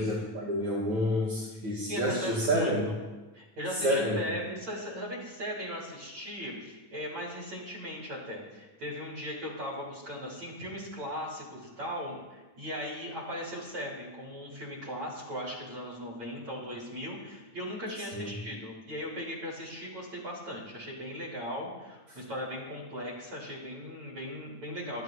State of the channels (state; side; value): late; left; 9.1 ms